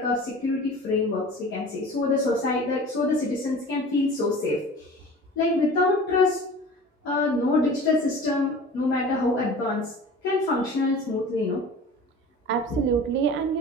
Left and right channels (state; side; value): normal; both; correlation 0.40